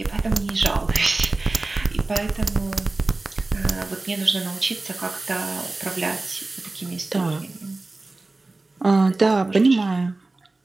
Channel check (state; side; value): quieter; left; 3.2 dB